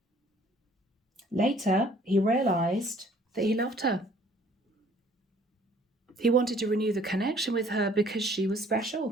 Later, he realized that he loved her. He wanted to renew the connection with her because she was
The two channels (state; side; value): normal; both; correlation 0.56